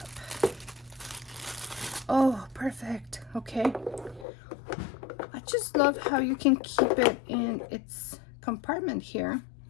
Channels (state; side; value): drops out; right; at 4.2 s